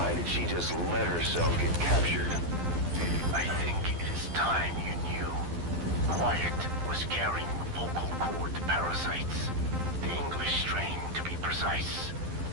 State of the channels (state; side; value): late; left; 12 ms